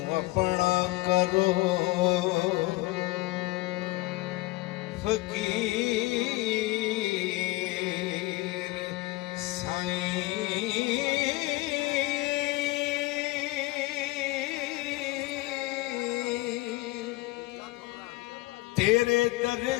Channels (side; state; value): right; quieter; 20.7 dB